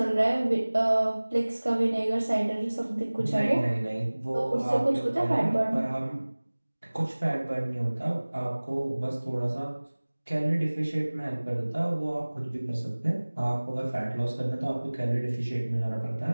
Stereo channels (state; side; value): inverted; both; correlation -1.00